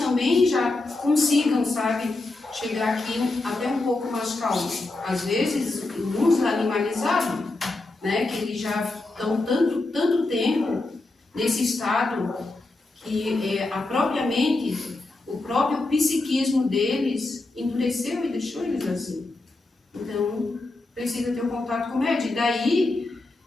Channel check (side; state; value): right; quieter; 3.1 dB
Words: já consigam, sabe, chegar aqui até um pouco mais calmo. Às vezes, uns animalizados, né? Que eles já estão tanto tempo nesse estado que a própria mente, o próprio psiquismo deles endureceu e deixou eles assim. Então, precisa ter um contato com o médium. E daí,